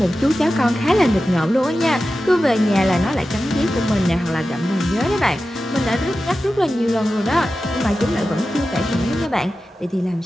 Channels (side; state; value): both; normal; correlation 0.93